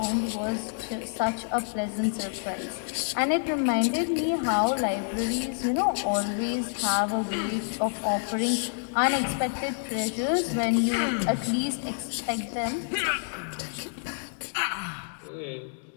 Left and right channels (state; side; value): silent; right; digital silence